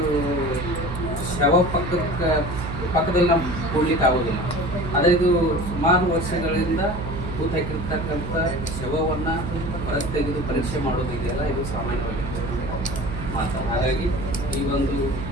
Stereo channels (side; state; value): right; noise; hum, 6 dB below the sound